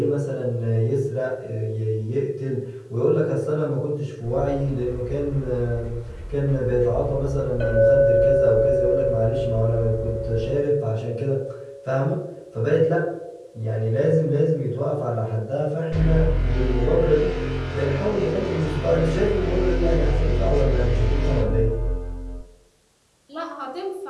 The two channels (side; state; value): both; identical; correlation 1.00